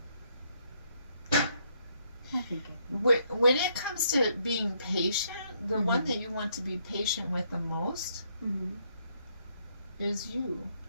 I think when it comes to being patient, the one that you want to be patient with the most is you.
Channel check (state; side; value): inverted; both; correlation -0.72